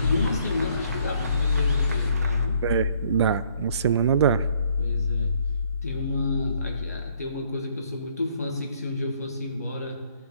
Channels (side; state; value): both; inverted; correlation -0.64